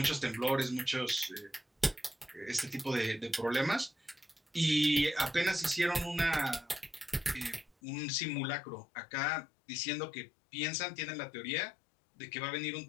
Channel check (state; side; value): drops out; right; at 7.8 s